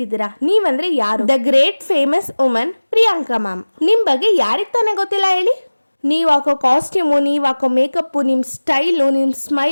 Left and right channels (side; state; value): both; inverted; correlation -1.00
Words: ನೀವಂದ್ರೆ ಯಾರು? The great famous woman Priyanka ma'am. ನಿಮ್ ಬಗ್ಗೆ ಯಾರಿಗ್ ತಾನೇ ಗೊತ್ತಿಲ್ಲ ಹೇಳಿ? ನೀವು ಹಾಕೋ ಕಾಸ್ಟ್ಯೂಮು, ನೀವು ಹಾಕೋ ಮೇಕಪ್ಪು, ನಿಮ್ಮ ಸ್ಟೈಲು, ನಿಮ್ಮ